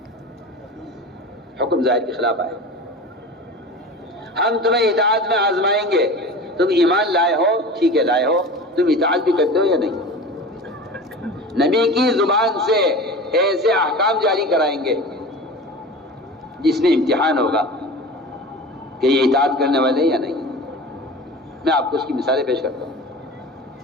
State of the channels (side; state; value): both; normal; correlation 0.34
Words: حکم ظاہر کے خلاف آئے، ہم تمہیں اطاعت میں آزمائیں گے، تم ایمان لائے ہو ٹھیک ہے، لائے ہو، تم اطاعت بھی کرتے ہو یا نہیں؟ نبی کی زبان سے ایسے احکام جاری کرائیں گے جس میں امتحان ہوگا کہ یہ اطاعت کرنے والے ہیں یا نہیں۔ میں آپ کو اس کی مثالیں پیش کرتا ہوں۔